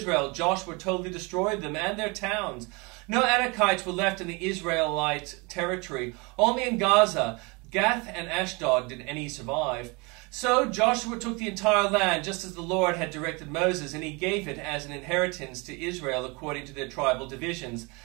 Joshua totally destroyed them and their towns. No Anakites were left in the Israelite territory. Only in Gaza, Gath, and Ashdod did any survive. So Joshua took the entire land, just as the Lord had directed Moses, and he gave it as an inheritance to Israel according to their tribal divisions.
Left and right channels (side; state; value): left; quieter; 28.3 dB